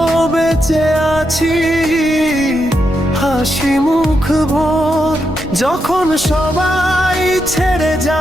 বেঁচে আছি হাসি মুখ ভোর। যখন সবাই ছেড়ে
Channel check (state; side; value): noise; right; rumble, 13 dB below the sound